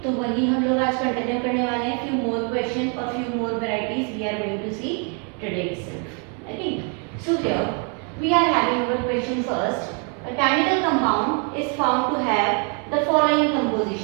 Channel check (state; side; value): quieter; left; 38.4 dB